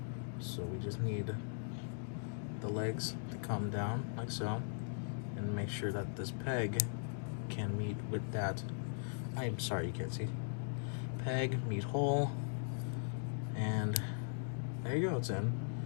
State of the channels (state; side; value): silent; right; digital silence